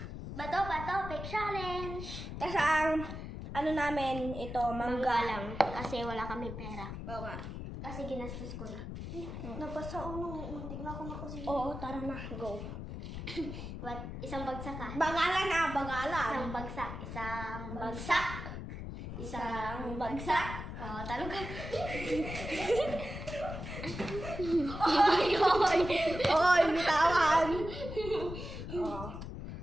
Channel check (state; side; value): noise; left; rumble, 8 dB below the sound